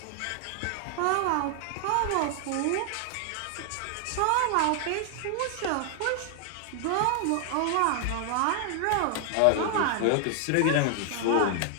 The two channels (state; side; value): different; both; correlation 0.00